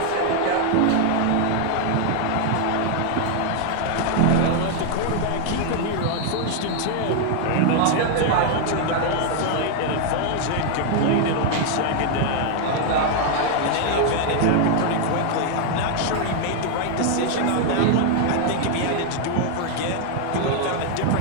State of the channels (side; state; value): both; different; correlation 0.00